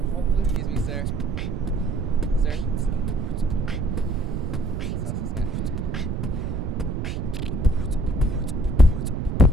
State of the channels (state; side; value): noise; right; rumble, 2 dB below the sound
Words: homeless. Excuse me, sir. Sir? Let's ask this guy.